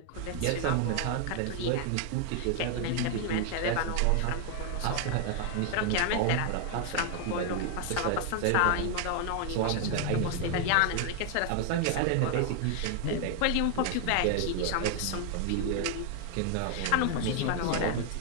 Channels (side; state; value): both; different; correlation 0.00